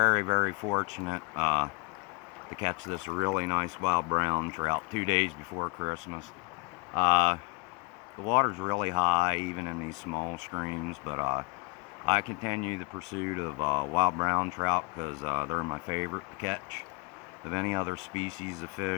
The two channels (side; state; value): right; quieter; 30.0 dB